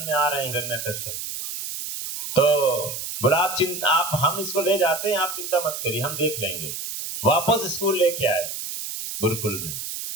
में आ रहे हैं हिरण्यकश्यप। तो बोला आप हम इसको ले जाते हैं, आप चिंता मत करिए, हम देख लेंगे। वापस स्कूल लेके आए गुरुकुल में,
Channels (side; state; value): right; noise; hiss, 6 dB below the sound